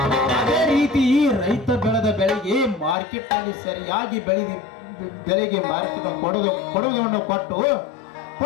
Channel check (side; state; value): right; drops out; at 3.0 s